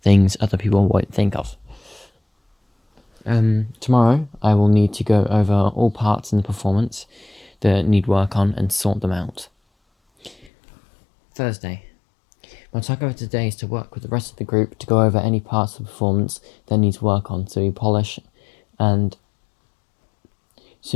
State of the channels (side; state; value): right; drops out; at 10.5 s